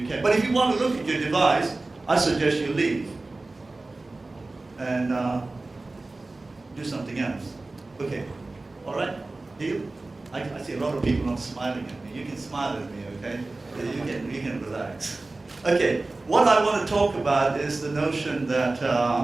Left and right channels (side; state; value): left; quieter; 3.2 dB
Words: can. But if you want to look at your device, I suggest you leave and do something else. Okay, all right, deal? I see a lot of people not smiling at me. You can smile at me, okay? You can relax. Okay, what I want to talk about is the notion that